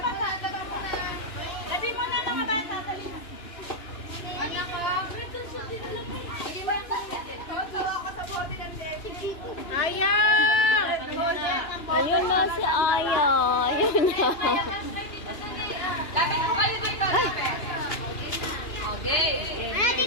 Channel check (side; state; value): right; late; 2.9 ms